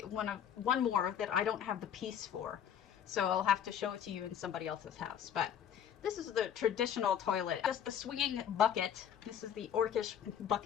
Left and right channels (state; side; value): quieter; right; 9.1 dB